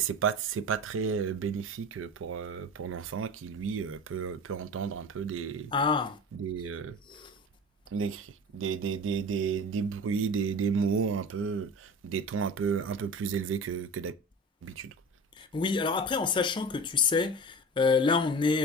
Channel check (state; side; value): normal; both; correlation 0.34